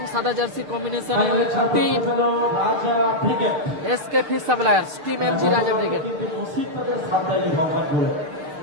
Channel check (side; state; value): left; late; 6.6 ms